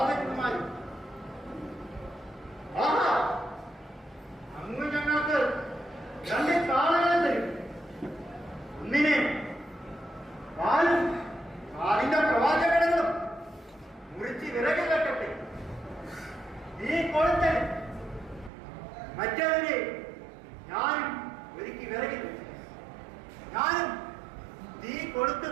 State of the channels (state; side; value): drops out; left; at 18.5 s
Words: ആഹാ, അങ്ങ് ഞങ്ങൾക്ക് 2 കാളകളെ തരും. ഒന്നിനെ കാലും കാലിന്റെ പ്രവാചകങ്ങളും മുറിച്ച് വിറക് കെട്ടട്ടെ. നീ കൊളുത്തൻ മറ്റവരെ ഞാനും ഒരുക്കി വിറകിൽ വെച്ചു. ഞാനും തീ